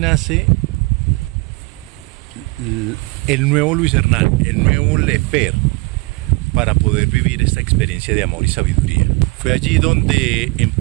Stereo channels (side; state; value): left; quieter; 25.6 dB